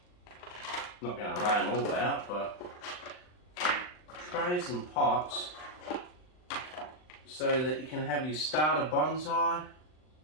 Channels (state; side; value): late; right; 39 ms